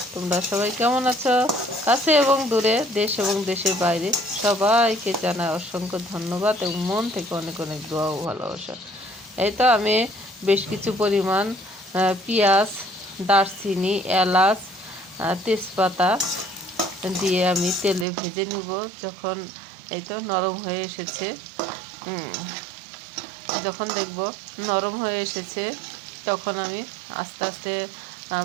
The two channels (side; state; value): left; drops out; at 18.1 s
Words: তোমরা সবাই কেমন আছো? কাছে এবং দূরে, দেশ এবং দেশের বাইরে সবাইকে জানাই অসংখ্য ধন্যবাদ এবং মন থেকে অনেক অনেক দোয়া ও ভালোবাসা। এই তো আমি বেশ কিছু পরিমাণ পেঁয়াজ, দারচিনি, এলাচ, তেজপাতা দিয়ে আমি তেলে ভেজে নিব। যখন এই তো নরম হয়ে এসেছে, যখন দেখব নরম হয়ে এসেছে, তখন আমি আস্তে আস্তে